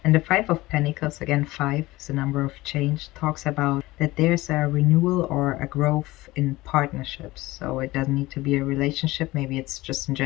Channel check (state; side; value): quieter; right; 19.2 dB